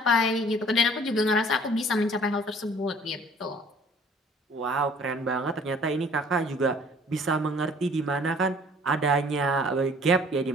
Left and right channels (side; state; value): both; normal; correlation 0.54